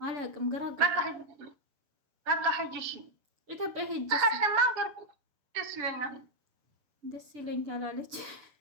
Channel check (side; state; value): left; late; 6.9 ms